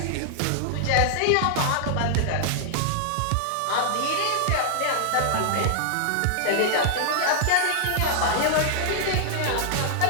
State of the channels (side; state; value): both; different; correlation -0.01